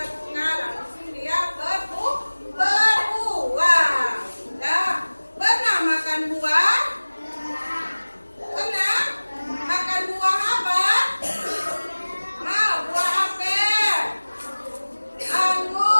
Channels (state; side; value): inverted; both; correlation -1.00